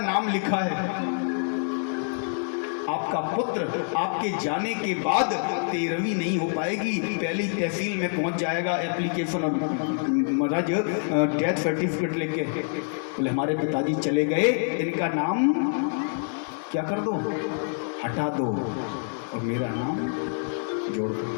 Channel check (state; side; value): silent; right; 61 dB below the other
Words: नाम लिखा है, आपका पुत्र आपके जाने के बाद 13वीं नहीं हो पाएगी, पहली तहसील में पहुंच जाएगा एप्लीकेशन और महाराज डेथ सर्टिफिकेट लेके। बोले हमारे पिताजी चले गए, इनका नाम क्या कर दो, हटा दो और मेरा नाम जोड़ दो।